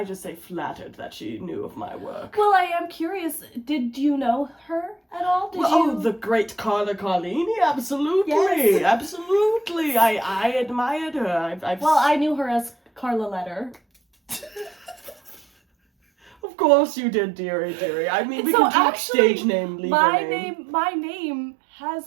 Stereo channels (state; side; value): drops out; left; at 16.3 s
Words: just say, flattered that she knew of my work. Well, I am curious. Did you know her at all? Did Oh, you? the great Carla Carlini, absolutely, Yes. absolutely. I admired her. I've Well, I knew her as Carla Letter. Of course you did, dearie. I mean, we So can talk actually, stage name, legal my name. my name